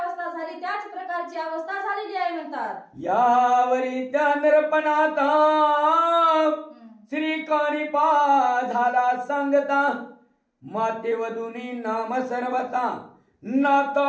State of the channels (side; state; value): both; identical; correlation 1.00